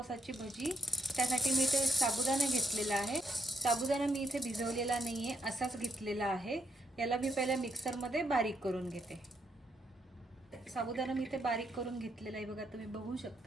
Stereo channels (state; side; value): normal; both; correlation 0.74